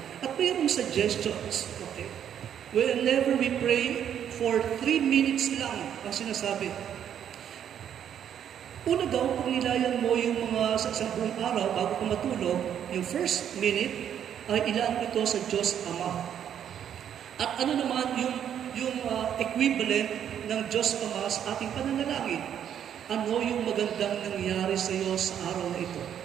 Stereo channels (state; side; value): quieter; left; 9.4 dB